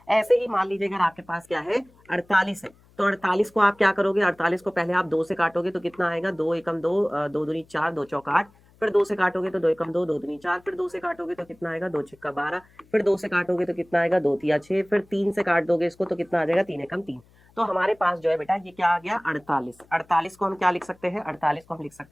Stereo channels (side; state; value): left; noise; hum, 30 dB below the sound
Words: ऐसे ही मान लीजिए अगर आपके पास क्या है? 48 है, तो 48 को आप क्या करोगे? 48 को पहले आप 2 से काटोगे तो कितना आएगा? 2 एकम 2, 2 दूनी 4, 2 चौक 8। फिर 2 से काटोगे तो 2 एकम 2, 2 दूनी 4। फिर 2 से काटोगे तो कितना आएगा? 2 छक्का 12। फिर 2 से काटोगे तो कितना आएगा? 2 तिया 6। फिर 3 से काट दोगे इसको तो कितना आ जाएगा? 3 एकम 3। तो हमारे पास जो है बेटा ये क्या आ गया? 48। 48 को हम क्या लिख सकते हैं? 48 को हम लिख